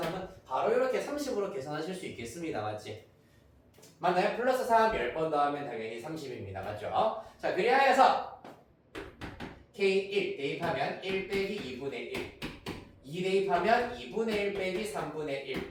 3은 바로 이렇게 30으로 계산하실 수 있겠습니다. 맞지? 맞나요? 플러스 3 10번 더하면 당연히 30입니다. 맞죠? 자, 그리하여서 K1 대입하면 1 빼기 2분의 1 2 대입하면 2분의 1 빼기 3분의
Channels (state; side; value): identical; both; correlation 1.00